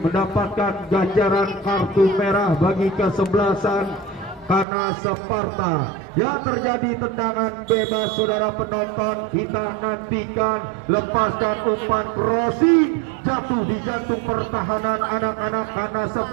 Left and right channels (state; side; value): drops out; left; at 4.7 s